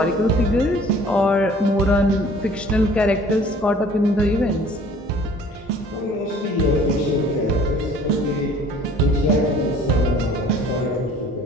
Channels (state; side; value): normal; both; correlation 0.51